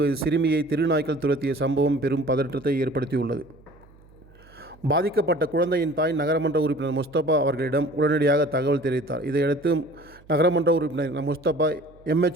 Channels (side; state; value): right; noise; hum, 26 dB below the sound